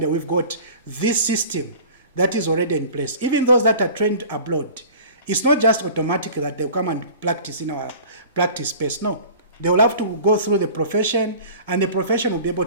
we've got this system that is already in place. Even those that are trained abroad, it's not just automatic that they'll come and practice in our practice space. No, they will have to go through the profession, and the profession will be able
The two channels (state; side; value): inverted; both; correlation -0.42